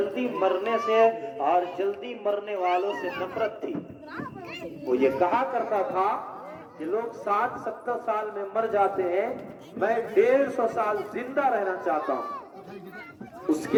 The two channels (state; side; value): identical; both; correlation 1.00